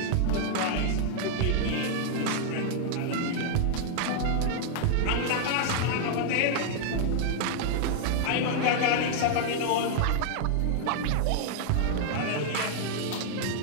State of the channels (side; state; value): both; different; correlation -0.01